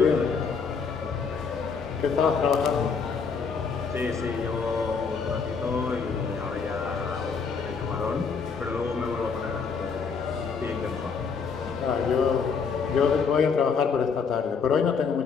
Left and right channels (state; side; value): quieter; right; 5.6 dB